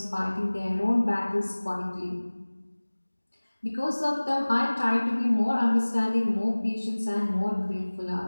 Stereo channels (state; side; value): inverted; both; correlation -1.00